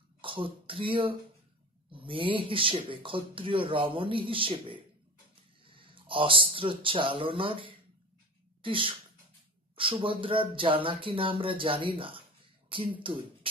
ক্ষত্রিয় মেয়ে হিসেবে, ক্ষত্রিয় রমণী হিসেবে অস্ত্র চালনার সুভদ্রার জানা কিনা আমরা জানি না, কিন্তু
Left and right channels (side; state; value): both; normal; correlation 0.35